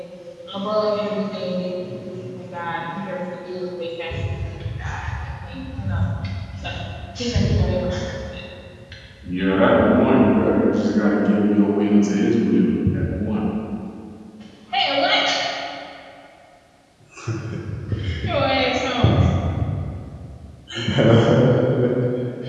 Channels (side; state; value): both; identical; correlation 1.00